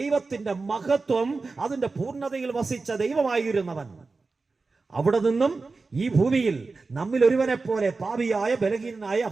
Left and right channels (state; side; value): quieter; left; 4.0 dB